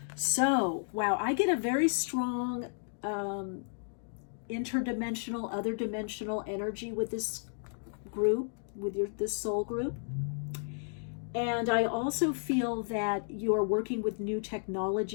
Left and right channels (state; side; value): silent; right; digital silence